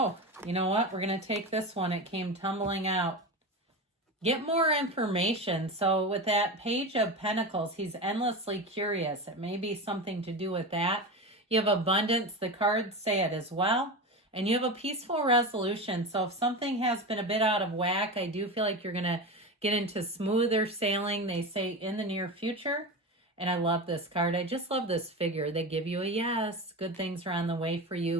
you know what? We're going to take this one. It came tumbling out. Get more information. So with that Page of Pentacles, he's endlessly curious. It may be something to do with that. You have abundance. The cards say it as well. And you have a peaceful resolution. So if something has been a bit out of whack, I do feel like you're going to get into smoother sailing. They say in the near future. And I love this card. I just love this figure. They give you a yes. Good things are on the way for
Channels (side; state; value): both; normal; correlation 0.23